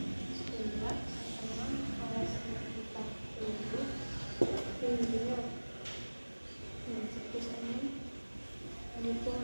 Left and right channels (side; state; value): both; inverted; correlation -1.00